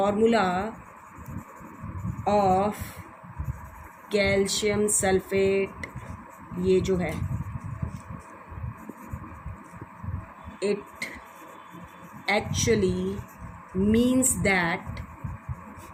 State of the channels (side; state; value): both; identical; correlation 1.00